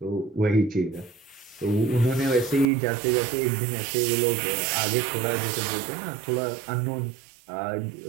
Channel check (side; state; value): left; drops out; at 2.7 s